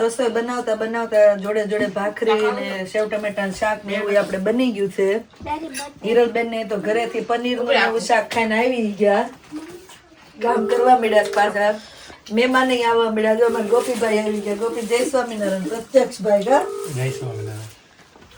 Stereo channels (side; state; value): both; identical; correlation 1.00